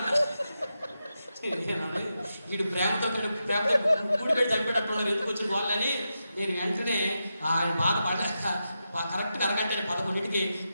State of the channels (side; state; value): both; inverted; correlation -0.88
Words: వీడు ప్రేమతో కూడి పెట్టి చనిపోయేటట్టున్నారు. ఎందుకు వచ్చిన వాళ్ళని నేను వెంటనే ఆయన బాధపడ్డాక కరెక్ట్గా అరగంట 11ంటికి